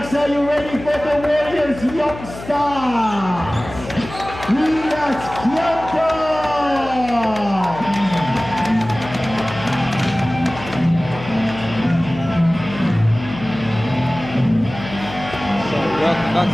are you ready for the Warriors? Youngstaaaaas. Relax, So welcome back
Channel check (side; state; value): left; noise; hum, 13 dB below the sound